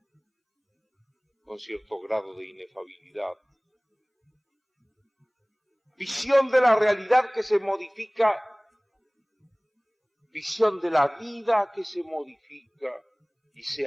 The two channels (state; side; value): identical; both; correlation 1.00